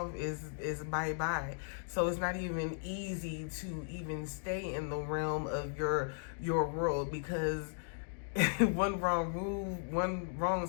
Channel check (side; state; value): right; silent; digital silence